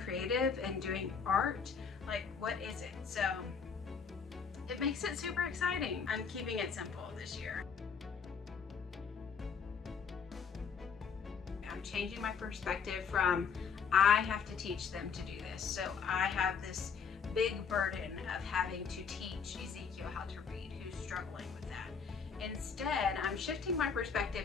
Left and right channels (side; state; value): right; quieter; 6.2 dB